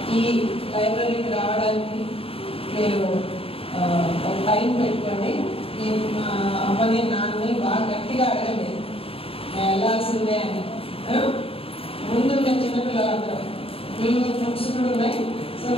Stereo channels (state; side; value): late; right; 0.27 ms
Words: ఈ లైబ్రరీకి రావడానికి మీరు ఒక టైం పెట్టుకోండి. మా అమ్మని నాన్నని బాగా గట్టిగా అడగండి వెళ్ళాల్సిందే అని. ముందుంటే చిన్నపిల్లలందరూ వీళ్ళు బుక్స్ కూడా ఉన్నాయి. సో